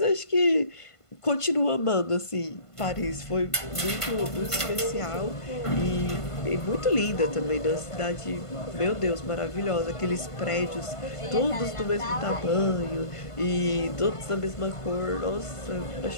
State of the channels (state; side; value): late; right; 1.5 ms